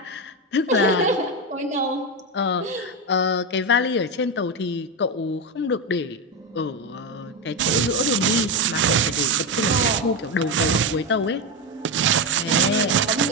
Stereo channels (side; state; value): both; normal; correlation 0.12